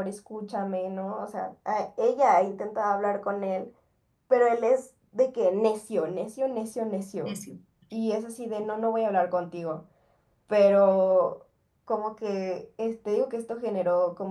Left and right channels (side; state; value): both; identical; correlation 1.00